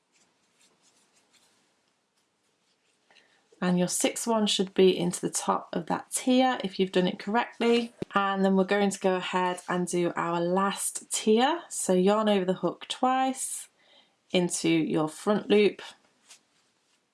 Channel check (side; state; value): both; identical; correlation 1.00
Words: and your sixth one should be into the top of that tier if you've done it correctly. And then we're going to go ahead and do our last tier. So yarn over the hook twice into your front loop,